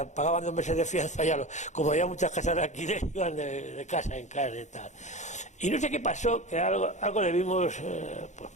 pagaban 2 meses de fianza, ya como había muchas casas de alquiler, iban de casa en casa y tal. Y no sé qué pasó, que algo le vimos,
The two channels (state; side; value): late; right; 0.34 ms